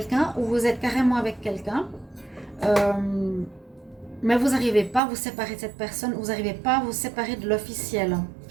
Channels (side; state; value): left; drops out; at 5.0 s